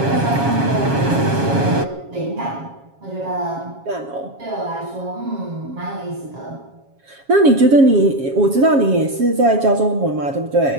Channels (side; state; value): left; late; 7.3 ms